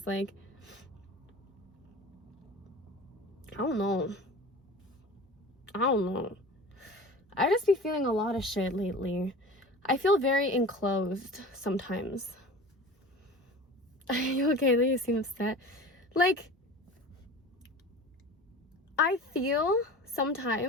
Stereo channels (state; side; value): normal; both; correlation 0.37